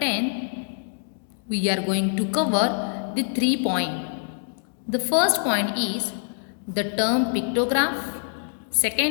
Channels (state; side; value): silent; right; digital silence